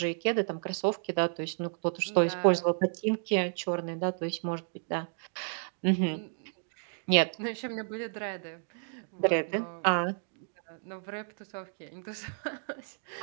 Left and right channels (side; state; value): left; silent; 55 dB below the other